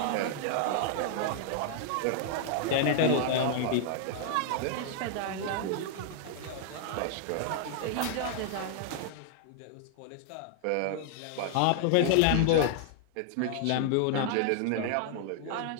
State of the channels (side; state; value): both; different; correlation -0.01